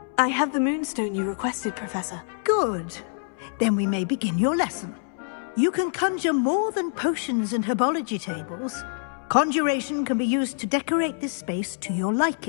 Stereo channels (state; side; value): silent; right; 61 dB below the other